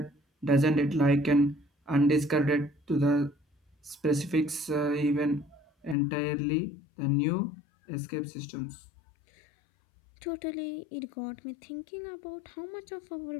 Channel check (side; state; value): right; drops out; at 6.0 s